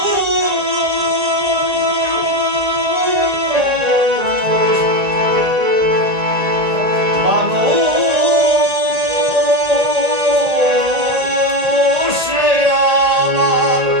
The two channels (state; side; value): late; left; 1.8 ms